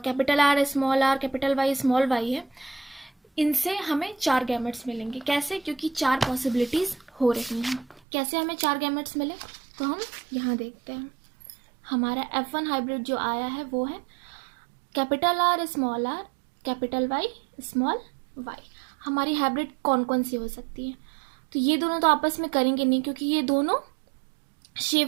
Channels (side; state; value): left; drops out; at 8.0 s